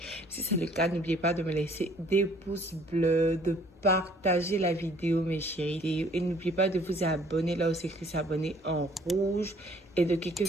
Si c'est le cas, n'oubliez pas de me laisser des pouces bleus, de partager la vidéo, mes chéris. Et n'oubliez pas de vous abonner, là où c'est écrit s'abonner en rouge. Et de cliquer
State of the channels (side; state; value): both; normal; correlation 0.58